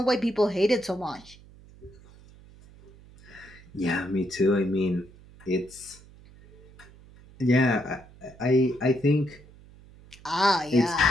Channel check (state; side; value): noise; right; hum, 23 dB below the sound